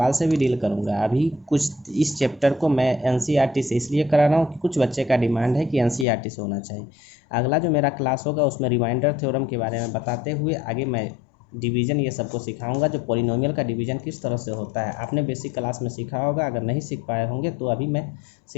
से भी डील करूँगा। अभी कुछ इस चैप्टर को मैं एनसीईआरटी से इसलिए करा रहा हूँ कि कुछ बच्चे का डिमांड है कि एनसीईआरटी से होना चाहिए। अगला जो मेरा क्लास होगा उसमें रिमाइंडर थ्योरम के बारे में बताते हुए आगे मैं डिवीज़न ये सबको सिखाऊंगा, जो पॉलिनोमियल का डिवीज़न किस तरह से होता है। आपने बेसिक क्लास में सीखा होगा, अगर नहीं सीख पाए होंगे तो अभी मैं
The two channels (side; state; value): right; drops out; at 6.1 s